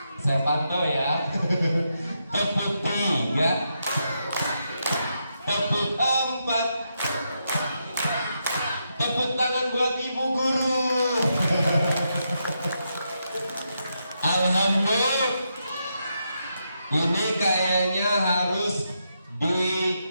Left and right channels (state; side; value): inverted; both; correlation -0.83